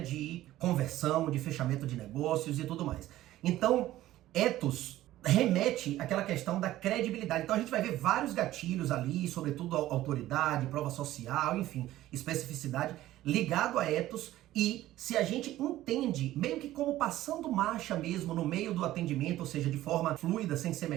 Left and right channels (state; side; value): quieter; left; 14.9 dB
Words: conversão, de fechamento de negócios e tudo mais. Então, ethos remete àquela questão da credibilidade. Então a gente vai ver vários gatilhos ali, sobretudo autoridade, prova social, enfim, especificidade, ligado a ethos. E se a gente entende, meio que como passando marcha mesmo no meio do atendimento, ou seja, de forma fluida, sem ser